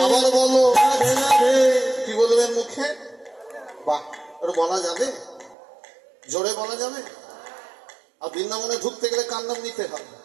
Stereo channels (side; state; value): left; drops out; at 5.6 s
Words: আবার বলো, কি বলবেন মুখে? বাহ, ওটা বলা যাবে, জোরে বলা যাবে। আর বৃন্দাবনে ঢুকতে গেলে কার নাম নিতে হবে?